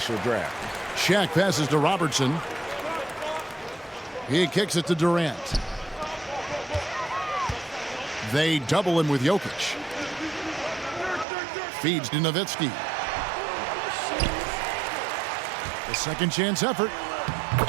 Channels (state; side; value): drops out; left; at 11.2 s